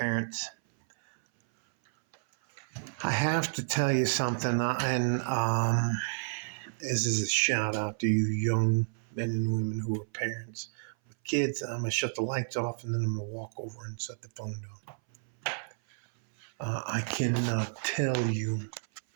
I have to tell you something, and this is a shout out to you young men and women who are parents with kids. I'm gonna shut the lights off, and then I'm gonna walk over and set the phone down. I cannot tell you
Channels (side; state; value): left; silent; 57 dB below the other